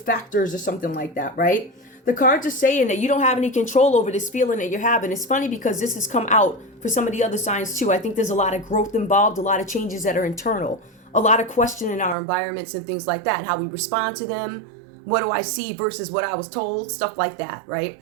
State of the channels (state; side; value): drops out; left; at 12.2 s